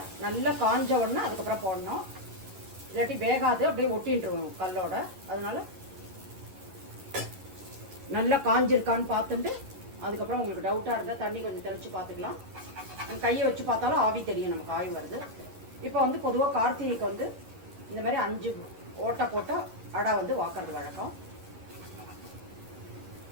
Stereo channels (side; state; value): left; late; 11 ms